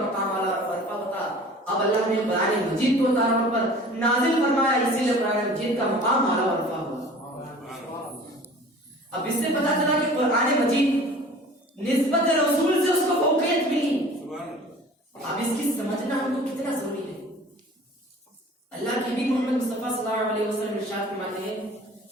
اعلیٰ و ارفع ہوتا۔ اب اللہ نے قرآن مجید کو اتارا پر نازل فرمایا، اسی لیے قرآن مجید کا مقام اعلیٰ و ارفع ہوا۔ اب اس سے پتہ چلا کہ قرآن مجید نسبت رسول سے اس کو فوقیت ملی. اب اس کی سمجھنا ہم کو کتنا ضروری ہے. اللہ کے نبی محمد مصطفیٰ صلی اللہ علیہ وسلم ارشاد فرماتے ہیں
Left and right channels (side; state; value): both; normal; correlation 0.45